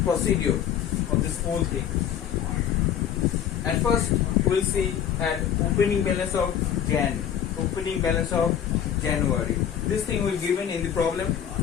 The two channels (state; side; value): quieter; right; 9.3 dB